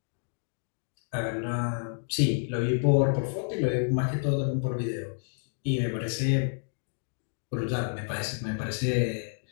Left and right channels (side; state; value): right; silent; digital silence